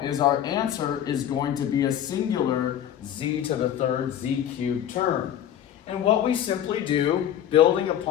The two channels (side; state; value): right; quieter; 10.5 dB